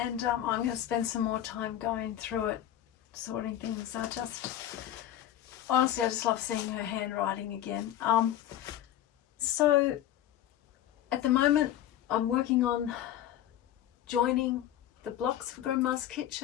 I'm going to spend some more time going through it, sorting things. Honestly, I just love seeing her handwriting again. So at the moment, I'm working on joining the blocks for Grandma's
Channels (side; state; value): right; quieter; 12.0 dB